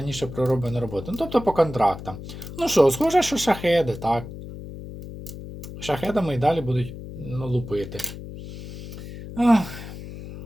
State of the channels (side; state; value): left; noise; hum, 12 dB below the sound